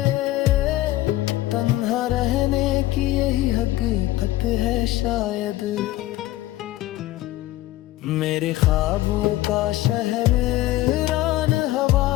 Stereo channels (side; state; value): right; quieter; 16.3 dB